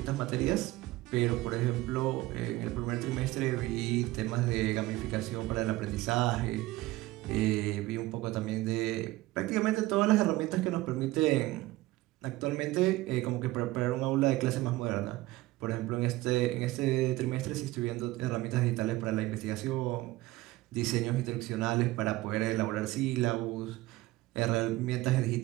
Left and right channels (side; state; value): left; quieter; 18.3 dB